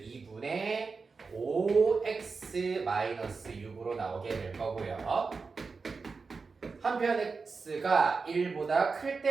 5x-6으로 나오게 될 거고요. 한편 x가 1보다 클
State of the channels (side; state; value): left; quieter; 4.6 dB